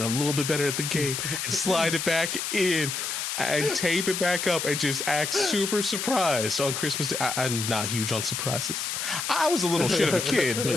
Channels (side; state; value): left; noise; hiss, 3 dB below the sound